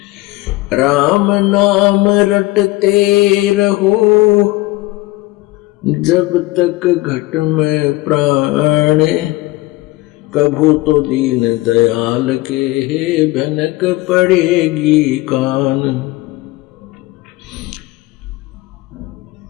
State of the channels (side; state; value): right; quieter; 19.3 dB